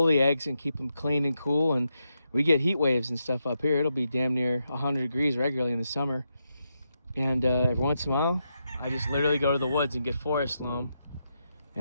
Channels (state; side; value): inverted; both; correlation -0.84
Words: the eggs and keep them clean and cool, and we get heat waves and stuff up here. It'll be damn near 100 degrees regularly in the summer. And every once in a while, I just literally go to the woods and get forest loam